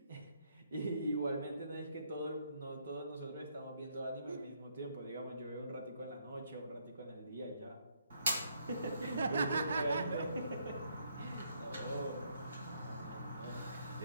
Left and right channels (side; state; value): both; inverted; correlation -0.72